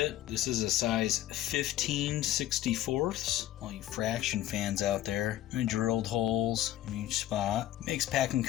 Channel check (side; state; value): right; quieter; 13.6 dB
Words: This is a size 15/64. All you fraction fans out there. I drilled holes in each spot. Makes packing